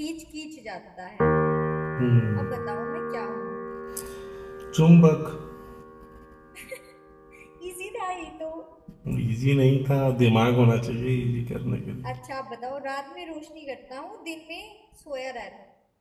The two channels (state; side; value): identical; both; correlation 1.00